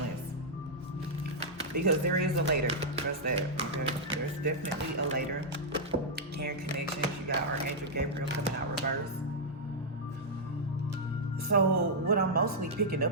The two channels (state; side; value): normal; both; correlation -0.06